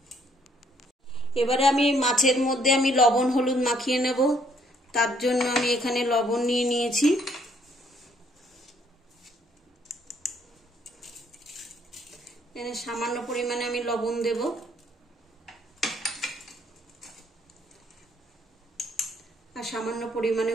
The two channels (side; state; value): both; normal; correlation 0.66